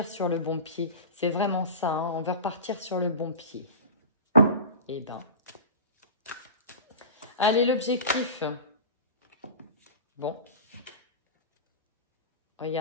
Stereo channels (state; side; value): inverted; both; correlation -0.32